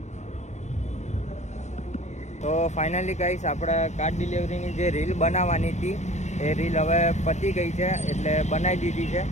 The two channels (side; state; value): right; late; 0.34 ms